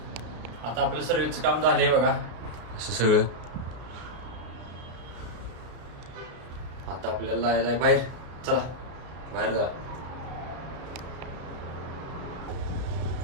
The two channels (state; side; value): late; left; 33 ms